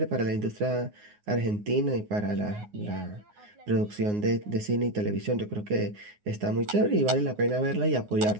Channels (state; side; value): late; left; 9.6 ms